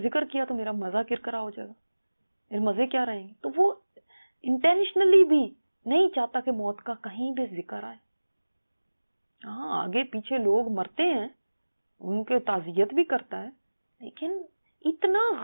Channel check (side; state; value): both; inverted; correlation -1.00